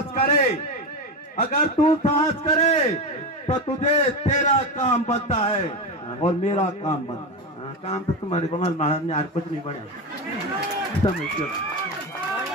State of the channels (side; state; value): both; normal; correlation 0.17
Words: करे, अगर तू साहस करे तो तुझे तेरा काम बनता है और मेरा काम बनता है। काम तो तुम्हारे को महाराज ने आज कुछ नहीं बढ़िया समझ लो,